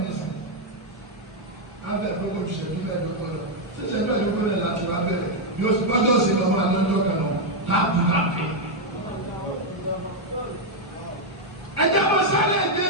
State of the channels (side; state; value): both; normal; correlation 0.00